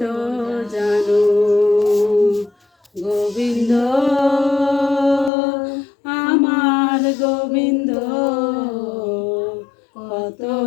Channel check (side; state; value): right; drops out; at 5.3 s